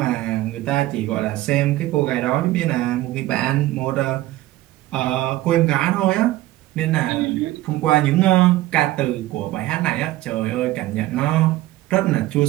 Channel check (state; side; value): quieter; left; 16.4 dB